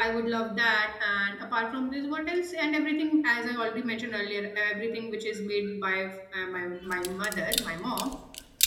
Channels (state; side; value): identical; both; correlation 1.00